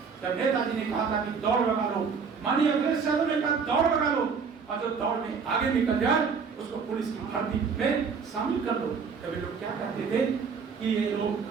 जब नेताजी ने कहा था कि दौड़ लगा लो, माननीय अखिलेश यादव ने कहा दौड़ लगा लो, और जो दौड़ में आगे निकल जाए उसको पुलिस की भर्ती में शामिल कर लो। तभी लोग क्या कहते थे कि ये लोग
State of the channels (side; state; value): left; quieter; 5.7 dB